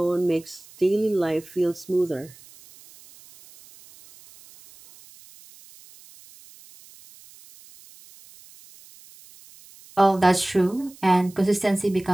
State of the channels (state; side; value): noise; right; hiss, 24 dB below the sound